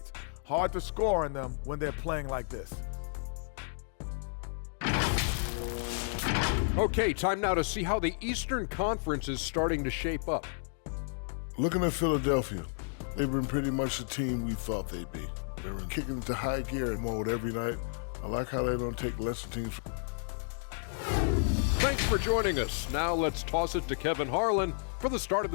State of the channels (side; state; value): right; silent; digital silence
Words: Hard to score on them when they're playing like this. Okay, time now to see how the Eastern Conference is starting to shape up. Looking at Philadelphia, they've been pretty much the team we thought they'd be. They've been kicking into high gear mode every night. I like how they don't take lesser teams. Thanks for joining us. Now let's toss it to Kevin Harlan for the start of